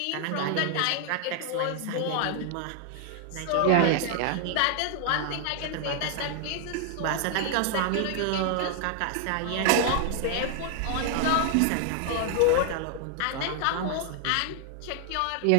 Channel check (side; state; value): both; different; correlation 0.00